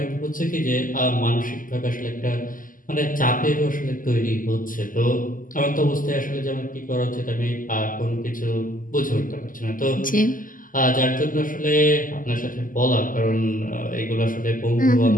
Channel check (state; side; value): late; right; 0.39 ms